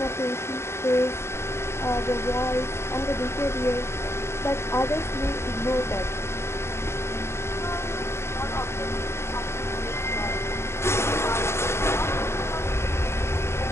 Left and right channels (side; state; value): right; late; 0.13 ms